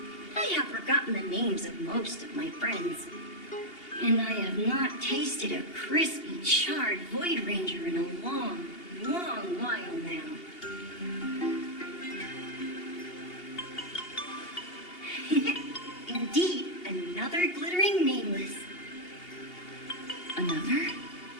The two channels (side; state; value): right; late; 2.8 ms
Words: I have forgotten the names of most of my friends. And I have not tasted a crispy, charred Void Ranger in a long, long while now. Indeed, another glittering nameless. Another?